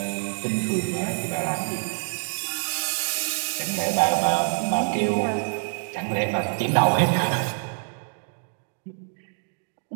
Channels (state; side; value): silent; left; 61 dB below the other